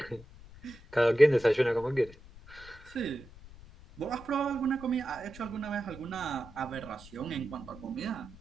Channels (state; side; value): noise; left; rumble, 19 dB below the sound